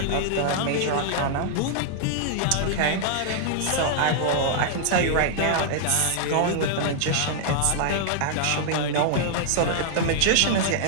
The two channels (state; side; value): different; both; correlation -0.01